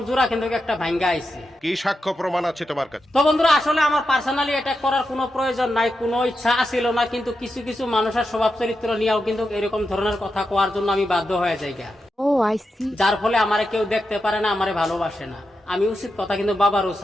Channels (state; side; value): normal; both; correlation 0.88